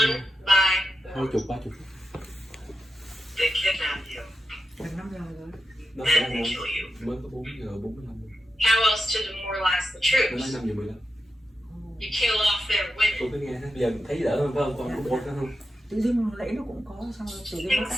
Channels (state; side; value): normal; both; correlation 0.89